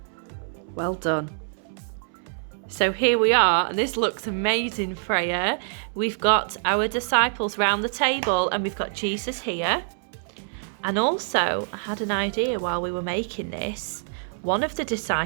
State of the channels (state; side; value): silent; left; 61 dB below the other